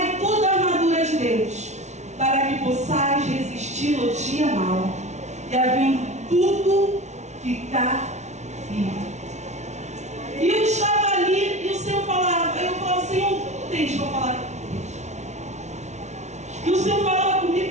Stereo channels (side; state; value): left; late; 0.33 ms